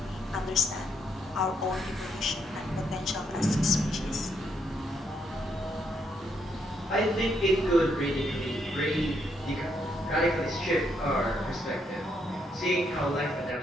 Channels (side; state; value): both; normal; correlation 0.75